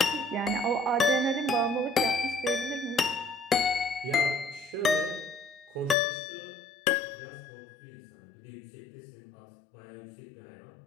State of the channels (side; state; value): right; drops out; at 6.0 s